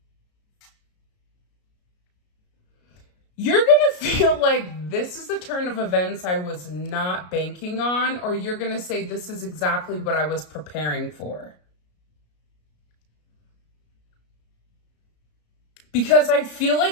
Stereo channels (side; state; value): right; late; 33 ms